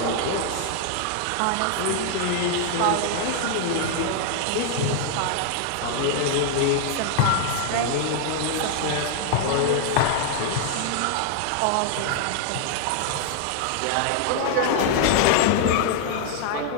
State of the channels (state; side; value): different; both; correlation 0.00